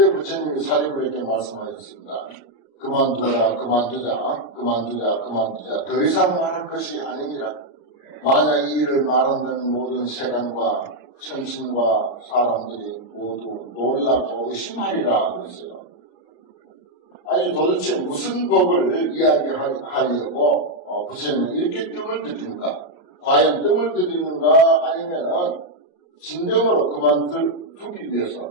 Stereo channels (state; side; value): late; right; 33 ms